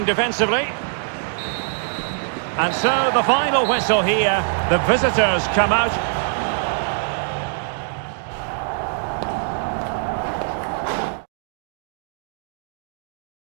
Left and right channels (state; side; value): silent; left; digital silence